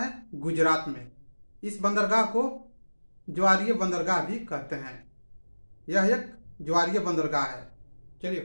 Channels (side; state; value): both; inverted; correlation -1.00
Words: है? गुजरात में। इस बंदरगाह को ज्वारीय बंदरगाह भी कहते हैं। यह एक ज्वारीय बंदरगाह है। चलिए